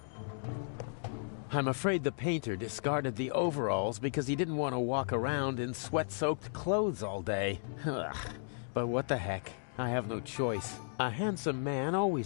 I'm afraid the painter discarded the overalls because he didn't want to walk around in sweat-soaked clothes all day. Ugh. But what the heck? I have no choice. A handsome man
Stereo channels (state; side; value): silent; right; digital silence